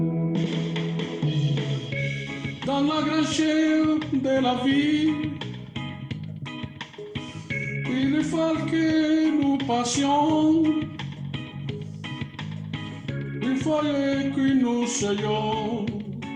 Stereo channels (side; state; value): both; identical; correlation 1.00